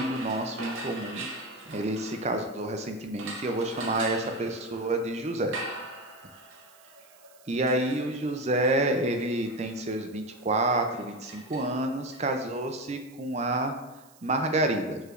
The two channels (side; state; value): right; noise; hiss, 26 dB below the sound